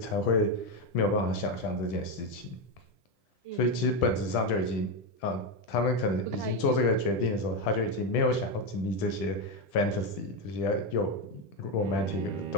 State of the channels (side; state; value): right; late; 10 ms